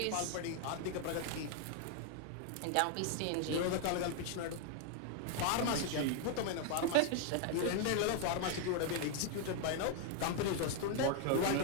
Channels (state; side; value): different; both; correlation 0.00